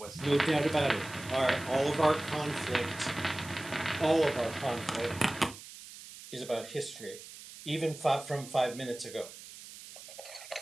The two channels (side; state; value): right; noise; hiss, 15 dB below the sound